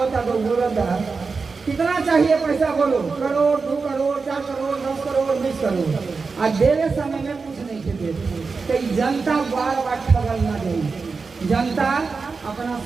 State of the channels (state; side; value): quieter; left; 4.6 dB